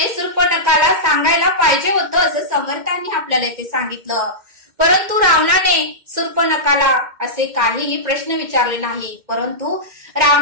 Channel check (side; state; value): left; late; 2.1 ms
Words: शूर्पणखाला सांगायला पाहिजे होतं असं समर्थांनी आपल्याला इथे सांगितलं। परंतु रावणाने शूर्पणखाला असे काहीही प्रश्न विचारले नाही, परंतु